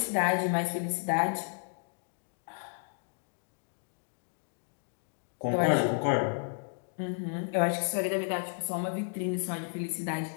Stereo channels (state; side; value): silent; right; 56 dB below the other